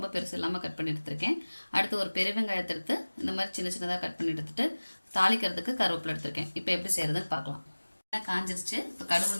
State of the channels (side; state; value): both; inverted; correlation -1.00